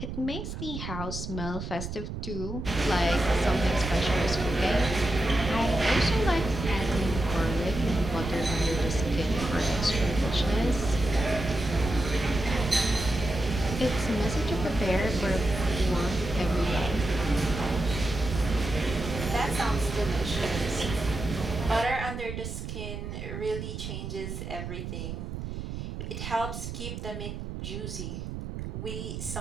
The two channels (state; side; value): noise; right; rumble, 7 dB below the sound